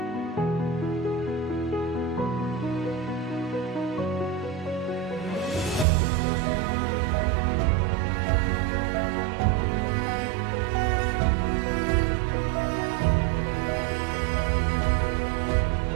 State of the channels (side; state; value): left; drops out; at 5.9 s